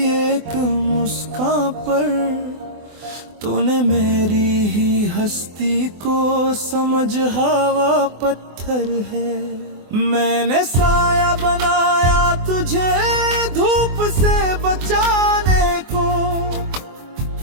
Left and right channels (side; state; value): left; late; 24 ms